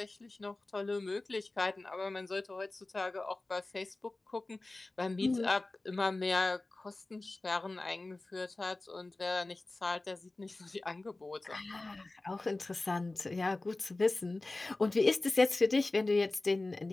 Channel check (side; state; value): right; quieter; 3.0 dB